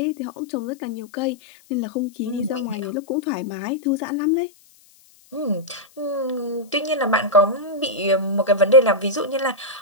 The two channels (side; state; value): left; noise; hiss, 29 dB below the sound